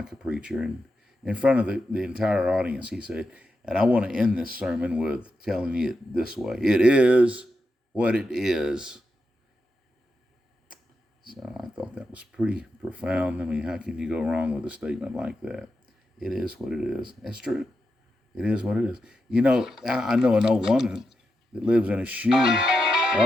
a preacher. And in front of the entire audience, he said, and I want to end this sermon with telling you it this way. It is what it is. So I thought that was pretty profound. I mean, how can you go wrong with a statement like that? It is what it is. That's true. It is what it is. I know an old woman that lives in a shoe.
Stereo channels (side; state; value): both; normal; correlation 0.86